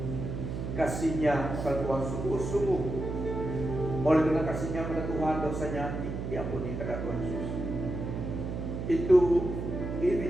kasihnya kepada Tuhan sungguh-sungguh. Oleh karena kasihnya kepada Tuhan, dosanya diampuni kepada Tuhan Yesus. Itu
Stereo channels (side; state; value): right; noise; hum, 4 dB below the sound